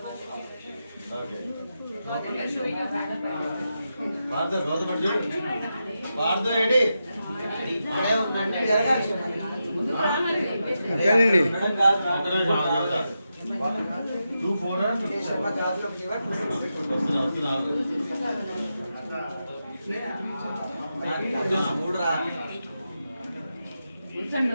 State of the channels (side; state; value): both; inverted; correlation -0.88